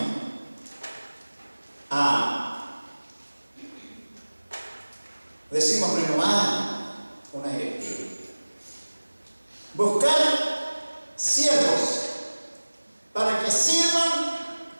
a, decimos, renovar una directiva. Buscar siervos para que sirvan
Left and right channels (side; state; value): both; inverted; correlation -1.00